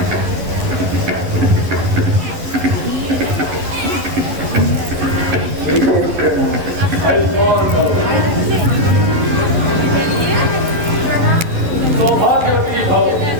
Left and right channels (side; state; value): left; late; 11 ms